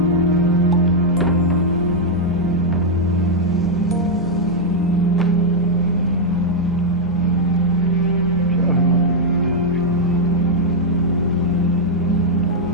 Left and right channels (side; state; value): both; normal; correlation -0.03